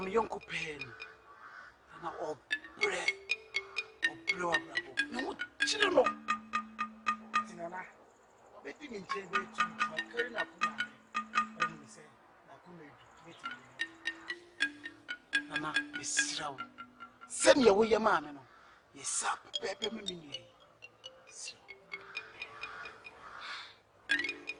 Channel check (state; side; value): identical; both; correlation 1.00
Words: a young pen, and I'm all bread or blow up. No, children. Let me tell you to my current up. And we say, Nana, Miss Row. Send your way, your man. Yes, up, Pepper Mini.